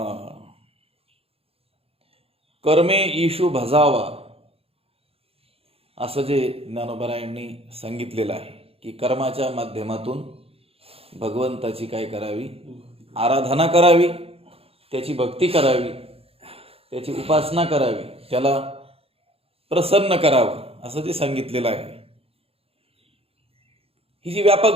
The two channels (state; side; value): late; left; 0.28 ms